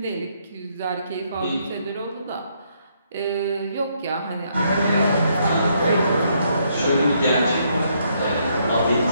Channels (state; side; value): inverted; both; correlation -0.73